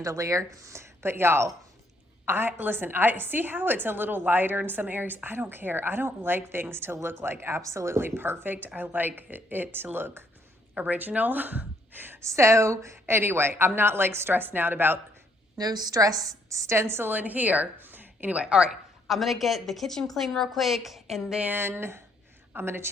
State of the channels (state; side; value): normal; both; correlation 0.70